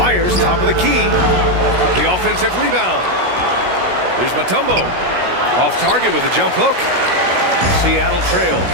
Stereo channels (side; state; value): left; late; 16 ms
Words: top of the key. The offensive rebound. Here's Mutombo. Off target with a jump hook. Seattle trails.